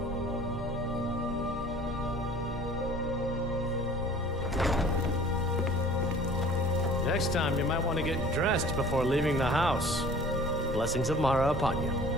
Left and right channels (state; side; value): normal; both; correlation 0.47